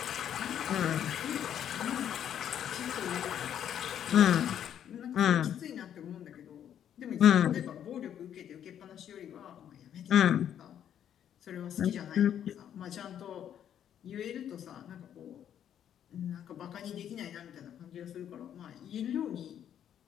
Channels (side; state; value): right; quieter; 9.8 dB